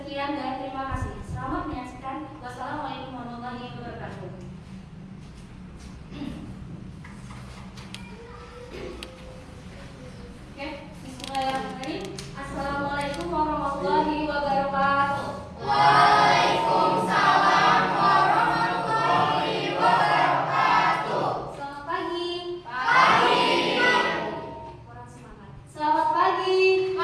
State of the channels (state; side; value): identical; both; correlation 1.00